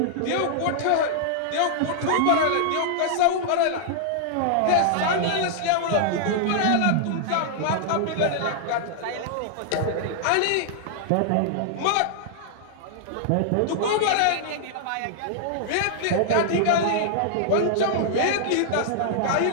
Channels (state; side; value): different; both; correlation -0.01